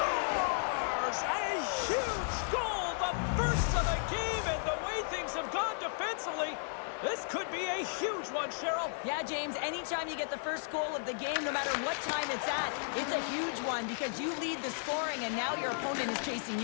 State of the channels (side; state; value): right; silent; digital silence